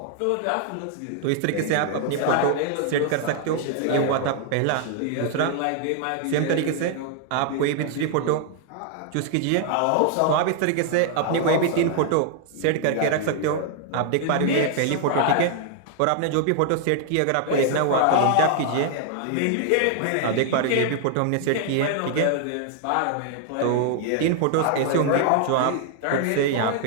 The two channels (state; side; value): different; both; correlation 0.00